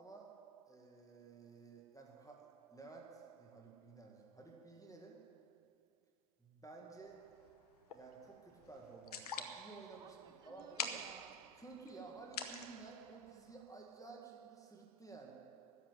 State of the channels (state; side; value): normal; both; correlation 0.19